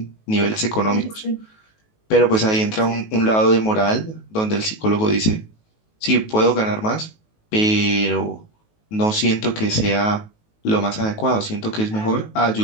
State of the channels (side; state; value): right; late; 19 ms